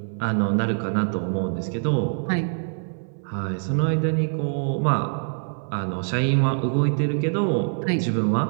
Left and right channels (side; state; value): left; silent; 60 dB below the other